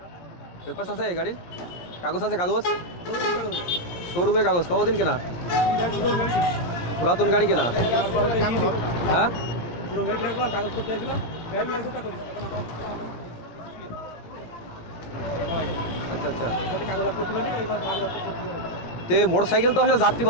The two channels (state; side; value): late; right; 17 ms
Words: পেপারস আছে গাড়ির? কাগজ আছে? কাগজ শোরুমের কাগজ কতদিন কেনা? পুরাতন গাড়ি কেনা? হ্যাঁ কাগজ করতে আসলাম আচ্ছা আচ্ছা। কাগজ করতে পারি এবার তো এই মোটরসাইকেল তো হলো যাত্রী